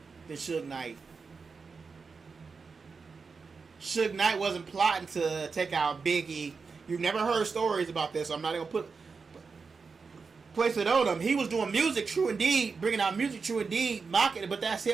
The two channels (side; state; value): left; quieter; 4.9 dB